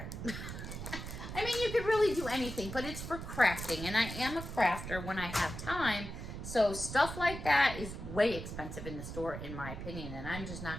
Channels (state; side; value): noise; right; rumble, 8 dB below the sound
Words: I mean, you could really do anything, but it's for crafting, and I am a crafter when I have time. So stuff like that is way expensive in the store, in my opinion, and I'm just